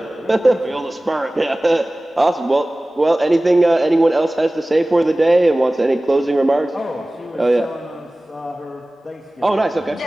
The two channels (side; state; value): both; normal; correlation 0.98